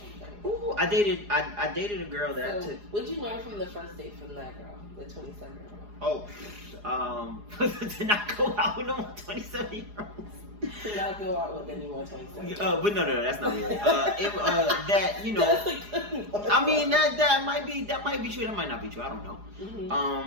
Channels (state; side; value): late; left; 4.8 ms